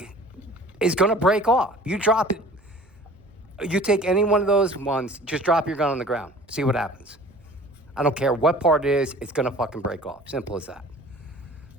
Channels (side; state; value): right; noise; rumble, 30 dB below the sound